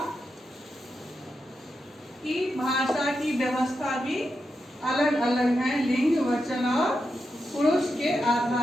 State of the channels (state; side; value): normal; both; correlation 0.87